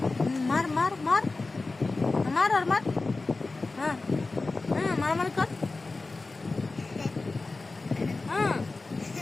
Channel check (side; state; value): right; quieter; 3.5 dB